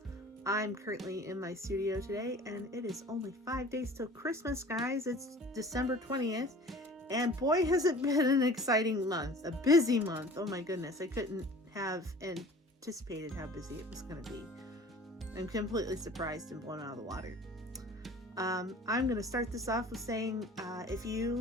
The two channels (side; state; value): both; normal; correlation 0.45